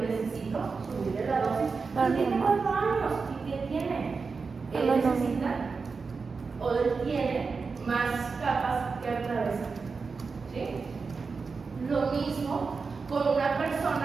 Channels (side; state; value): left; quieter; 4.8 dB